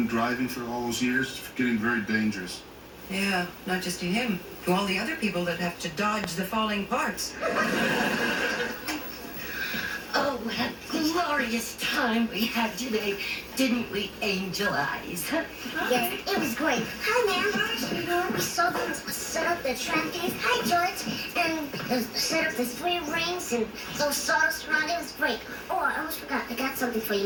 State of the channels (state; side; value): identical; both; correlation 1.00